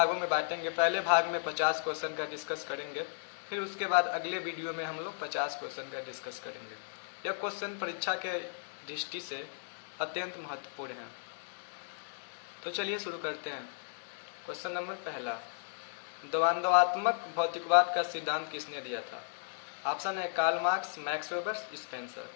में बांटेंगे। पहले भाग में 50 क्वेश्चन का डिस्कस करेंगे, फिर उसके बाद अगले वीडियो में हम लोग 50 क्वेश्चन का डिस्कस करेंगे। यह क्वेश्चन परीक्षा के दृष्टि से अत्यंत महत्वपूर्ण है। तो चलिए शुरू करते हैं। क्वेश्चन नंबर पहला, द्वंद्वात्मक भौतिकवाद का सिद्धांत किसने दिया था? ऑप्शन है Karl Marx, Max Weber, Spencer.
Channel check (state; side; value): silent; right; digital silence